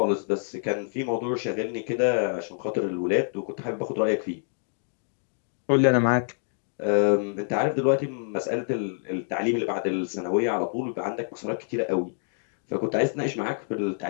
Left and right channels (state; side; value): silent; right; digital silence